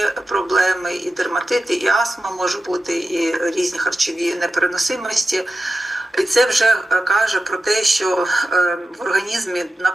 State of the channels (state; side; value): normal; both; correlation 0.93